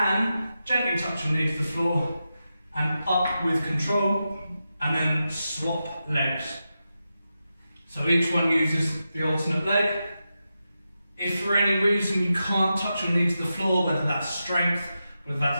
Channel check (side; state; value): both; inverted; correlation -0.90